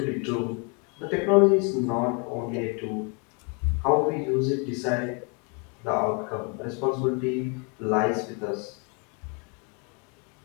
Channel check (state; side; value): quieter; right; 35.2 dB